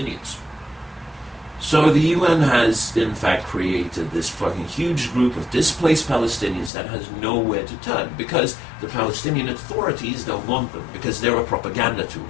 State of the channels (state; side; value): drops out; right; at 6.7 s